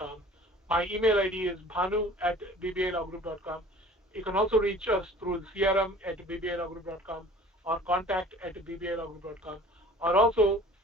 My email ID is bhanu@bbilawgroup.com. You can also reach us through crm@bbilawgroup.com or contact@bbilawgroup.com, or also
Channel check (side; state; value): both; normal; correlation 0.47